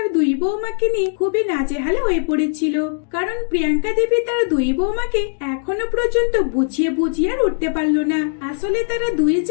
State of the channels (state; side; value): silent; right; digital silence